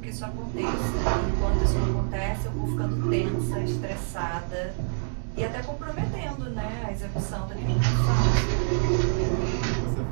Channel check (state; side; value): silent; left; digital silence